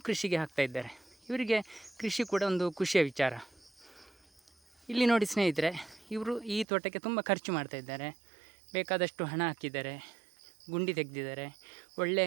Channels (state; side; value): drops out; left; at 6.7 s